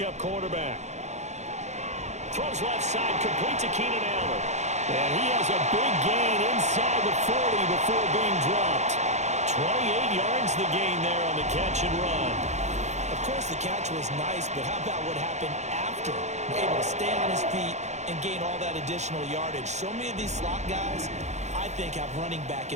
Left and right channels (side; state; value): left; late; 0.33 ms